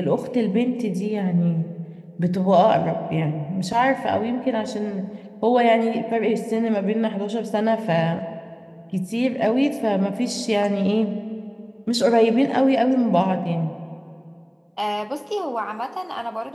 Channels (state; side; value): identical; both; correlation 1.00